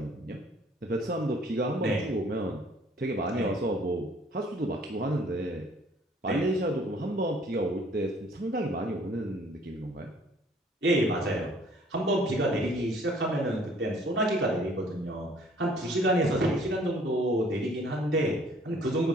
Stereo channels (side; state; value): both; normal; correlation 0.58